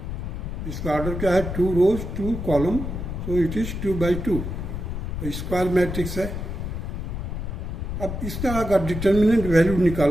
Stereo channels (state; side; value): noise; left; rumble, 5 dB below the sound